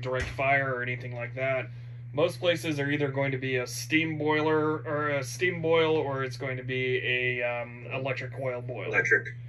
direct fire or anything like that. Most places are either going to be a steam boiler or a steam boil, or it's going to be a electric coil boil. Electric.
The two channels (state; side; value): identical; both; correlation 1.00